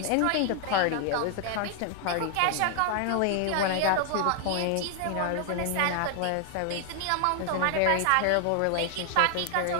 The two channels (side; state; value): both; different; correlation 0.00